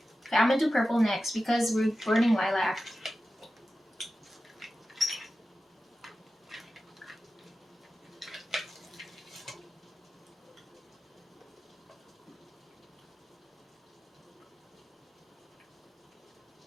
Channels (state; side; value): normal; both; correlation 0.93